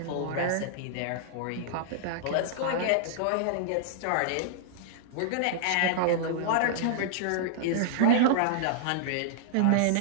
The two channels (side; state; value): both; different; correlation -0.01